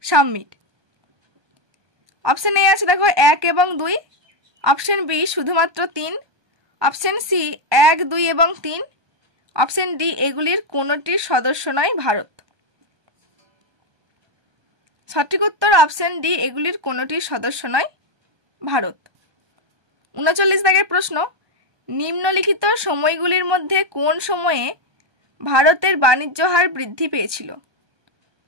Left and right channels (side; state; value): left; late; 1.2 ms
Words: summit. Option A আছে দেখো 1 এবং 2, অপশন বি শুধুমাত্র 3, অপশন সি 1, 2 এবং 3, অপশন ডি এগুলির কোনোটির সদস্য নয় ভারত। সঠিক উত্তর অপশন ডি এগুলির কোনোটির সদস্য নয় ভারত। 39 দাগের প্রশ্ন, নিম্নলিখিত সময়গুলির মধ্যে কোন সময়ে ভারতের বাণিজ্য হার বৃদ্ধি পেয়েছিল?